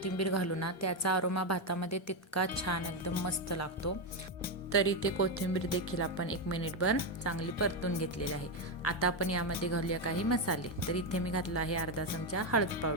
घालू ना त्याचा अरोमा भातामध्ये तितका छान एकदम मस्त लागतो। तर इथे कोथिंबीर देखील आपण 1 मिनिटभर चांगली परतून घेतलेली आहे। आता आपण यामध्ये घालूया काही मसाले। तर इथे मी घातला आहे अर्धा चमचा हळद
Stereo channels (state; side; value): normal; both; correlation 0.07